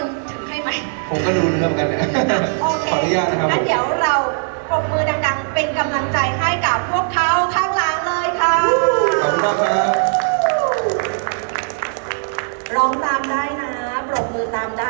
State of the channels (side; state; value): left; silent; 57 dB below the other